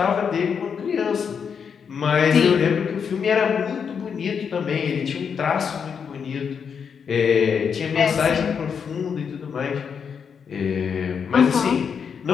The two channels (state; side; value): quieter; right; 6.7 dB